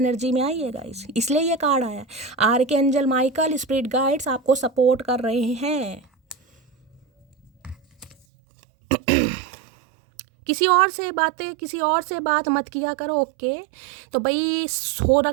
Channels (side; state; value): left; drops out; at 8.2 s